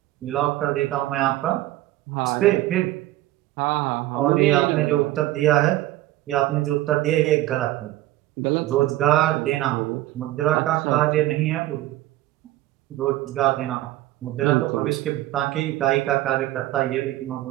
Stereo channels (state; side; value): quieter; left; 15.8 dB